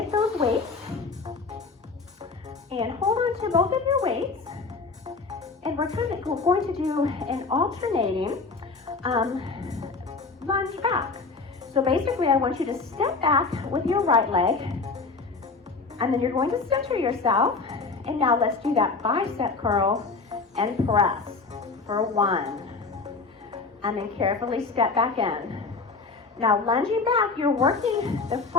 those weights and hold on to both of your weights. And we're going to do an alternating lunge back. So basically, I want you to step back with your right leg, and then you're going to center yourself. And now let's do that bicep curl and press for 1. And then carefully step back in. Now lunging back, you're working the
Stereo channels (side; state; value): right; quieter; 4.2 dB